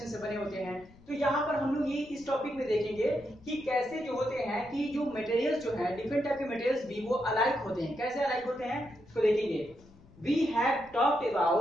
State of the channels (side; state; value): left; noise; rumble, 24 dB below the sound